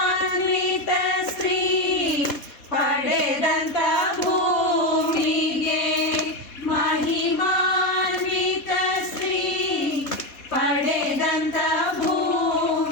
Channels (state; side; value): late; right; 4.2 ms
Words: ಸ್ತ್ರೀ ಪಡೆದಂತ ಭೂಮಿಗೆ, ಮಹಿಮಾನ್ವಿತ ಸ್ತ್ರೀ ಪಡೆದಂತ